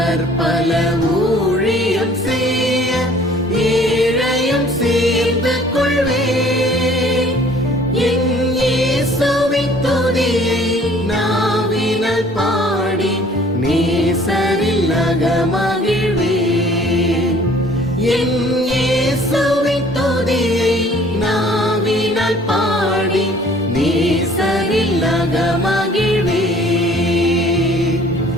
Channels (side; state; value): both; normal; correlation 0.54